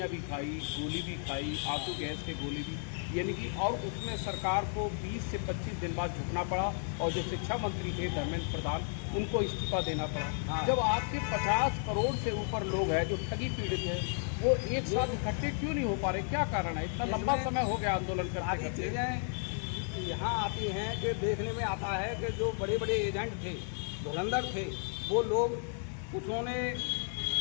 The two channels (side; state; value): right; silent; 55 dB below the other